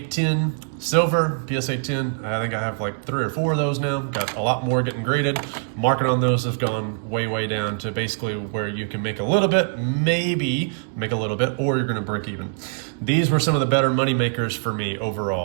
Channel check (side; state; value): left; silent; digital silence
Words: 10, silver, PSA 10. I think I have like 3 or 4 of those now. Got a lot more getting graded. Market on those has gone way, way down to basically where you can make a little bit, maybe make a little bit, or you're gonna break even. These were some of the better money makers for me